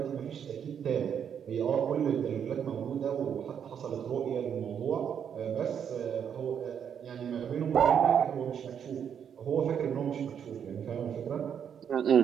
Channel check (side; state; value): left; quieter; 8.1 dB